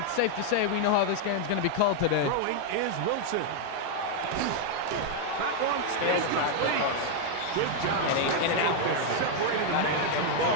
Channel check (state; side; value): different; both; correlation -0.01